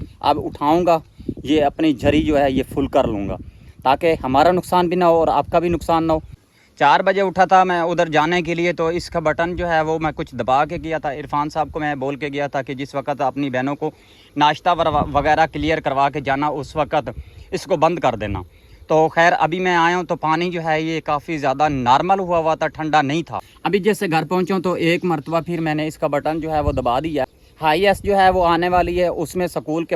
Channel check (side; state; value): both; identical; correlation 1.00